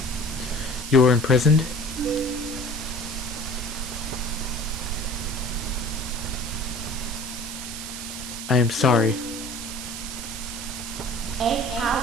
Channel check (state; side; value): noise; right; hiss, 8 dB below the sound